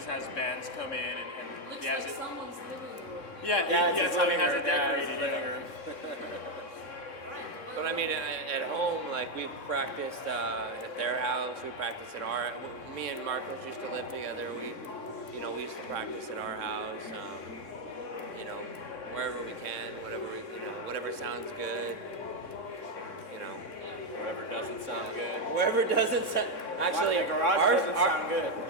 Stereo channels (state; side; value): late; right; 3.6 ms